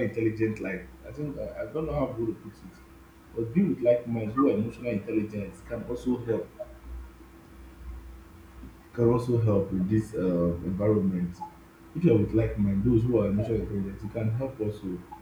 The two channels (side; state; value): both; identical; correlation 1.00